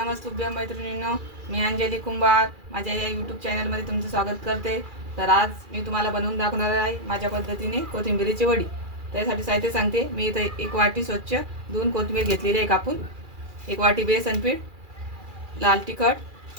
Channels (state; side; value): late; left; 2.4 ms